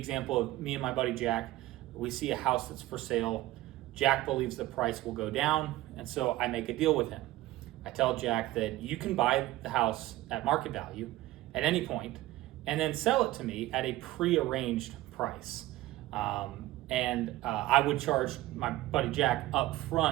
of me and my buddy Jack. We see a house that's for sale. Jack believes the price will go down, and so I make a deal with him. I tell Jack that you can buy the house at market value at any point and then sell it to me at a prearranged price. I would charge my buddy Jack up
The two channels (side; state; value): left; quieter; 16.7 dB